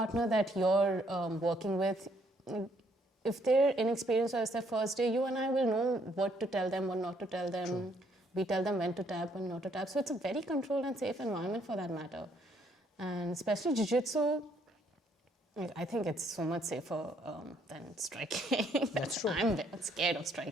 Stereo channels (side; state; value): both; normal; correlation 0.68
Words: that you're working with, if they're inexperienced or it's their first day, you and I will know what to tell them, what not to tell them. True. We tell them when to tap and not to tap. So it's a very controlled and safe environment for that matter. And especially Jiu Jitsu, I think it's so much safer than striking. That's true. I'm scared of